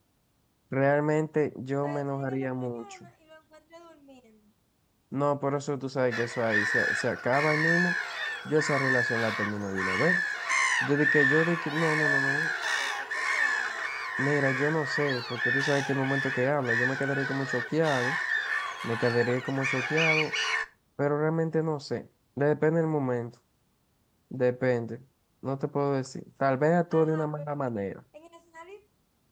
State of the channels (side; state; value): both; identical; correlation 1.00